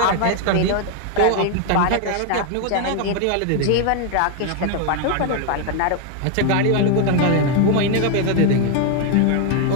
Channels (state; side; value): different; both; correlation 0.00